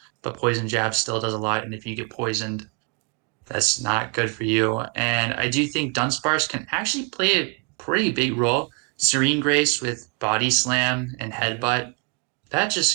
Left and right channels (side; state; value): left; quieter; 33.6 dB